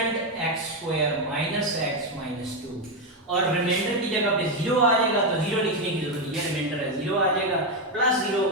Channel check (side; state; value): both; normal; correlation 0.07